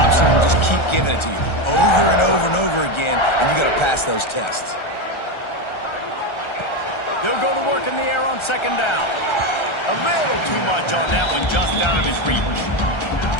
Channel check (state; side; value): late; right; 1.3 ms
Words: will just keep giving it to you over and over and over again, and you got to pass those tests. They'll go to work in the air on second down. A little too much on that one, just out of his reach.